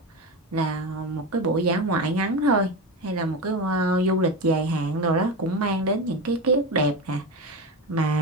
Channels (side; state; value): both; normal; correlation 0.21